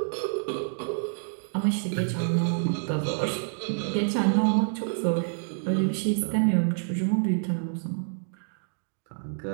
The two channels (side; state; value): left; silent; digital silence